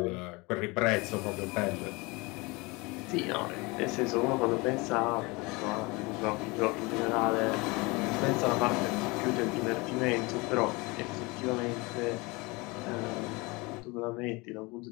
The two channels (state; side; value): quieter; right; 25.3 dB